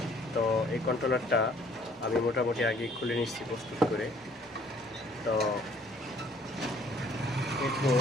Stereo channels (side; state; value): both; normal; correlation 0.59